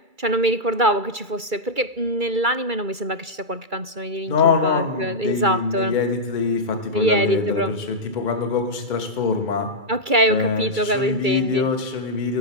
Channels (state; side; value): late; left; 2.3 ms